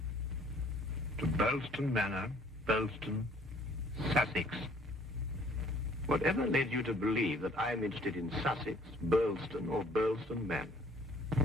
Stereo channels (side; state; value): both; normal; correlation 0.58